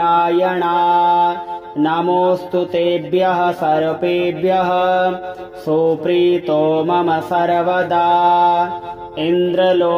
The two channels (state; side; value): identical; both; correlation 1.00